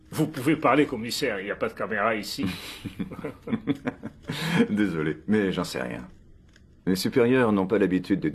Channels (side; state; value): both; identical; correlation 1.00